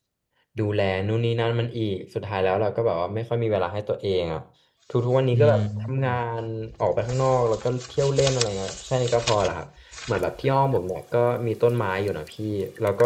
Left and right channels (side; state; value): both; identical; correlation 1.00